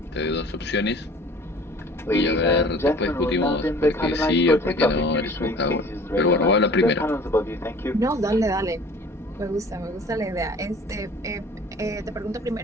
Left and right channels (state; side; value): normal; both; correlation 0.47